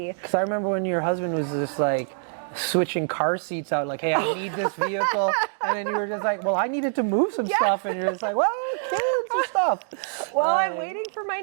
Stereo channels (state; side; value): silent; left; digital silence